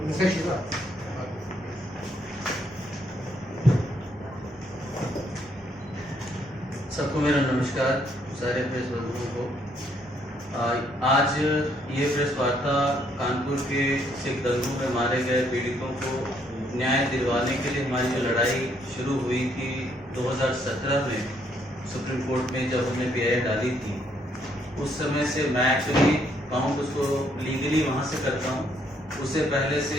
उनसे शुरुआत। सबको मेरा नमस्कार, सारे प्रेस बंधुओं को। आज ये प्रेस वार्ता कानपुर के सिख दंगों में मारे गए पीड़ितों को न्याय दिलवाने के लिए हमारी जो लड़ाई शुरू हुई थी 2017 में सुप्रीम कोर्ट में, जब हमने PIL डाली थी, उस समय से मैं एक्चुअली कहूँ उसको लीगली वहाँ से करता हूँ। उससे पहले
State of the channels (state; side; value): normal; both; correlation 0.70